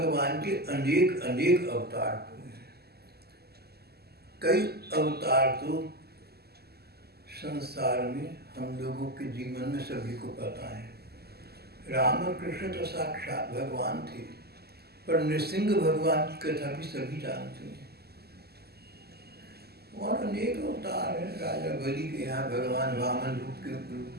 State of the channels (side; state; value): left; late; 0.46 ms